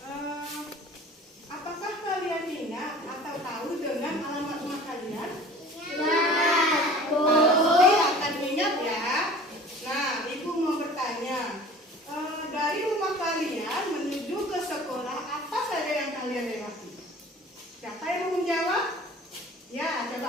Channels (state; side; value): normal; both; correlation 0.44